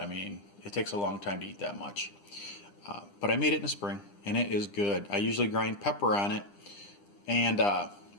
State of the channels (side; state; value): right; late; 9.9 ms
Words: mean, it takes a long time to eat that much. But I made it in the spring, and it is good. I usually grind pepper on it. And